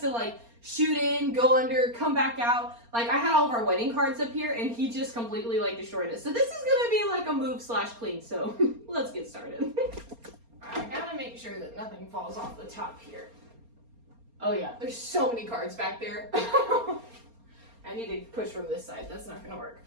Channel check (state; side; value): late; left; 4.3 ms